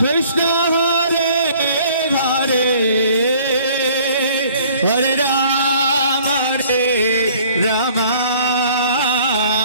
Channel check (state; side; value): inverted; both; correlation -0.55